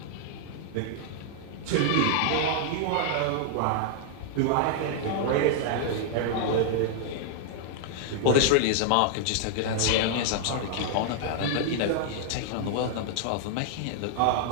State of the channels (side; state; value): both; different; correlation -0.01